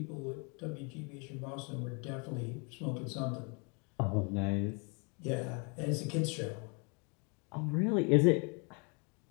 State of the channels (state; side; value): quieter; right; 34.0 dB